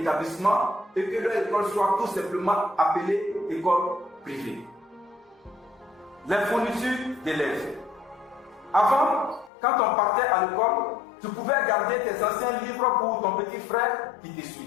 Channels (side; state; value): right; drops out; at 9.5 s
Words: et que leur école soit tout simplement appelée école privée. Les fournitures d'élèves. Avant, quand on partait à l'école, tu pouvais garder tes anciens livres pour ton petit frère qui te